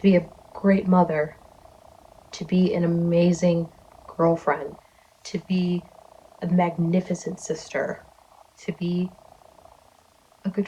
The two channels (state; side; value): identical; both; correlation 1.00